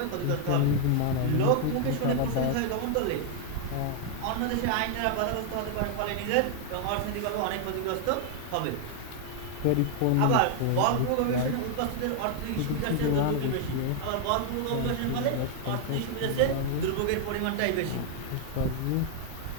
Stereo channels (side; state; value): both; different; correlation 0.00